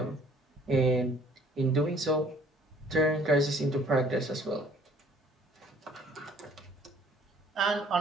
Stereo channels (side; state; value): both; normal; correlation 0.57